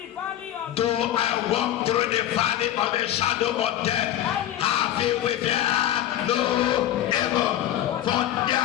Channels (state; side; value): quieter; right; 12.3 dB